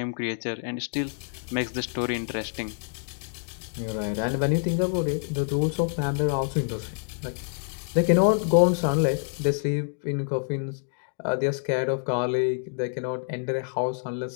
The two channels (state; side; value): silent; right; digital silence